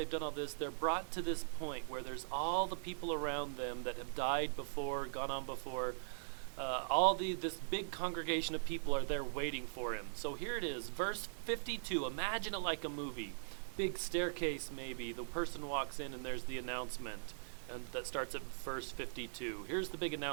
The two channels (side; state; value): left; silent; digital silence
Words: done all this, they're brought to this point where there's all the people around them that have died before, gone on before. This big congregation of people are there waiting for him. So here it is, verse 52. Imagine it like a movie. Big staircase maybe. The person walks in and there's the announcement, and that starts at verse 52. Here's the big